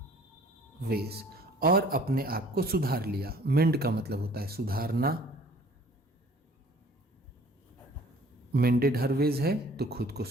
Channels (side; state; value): both; normal; correlation 0.53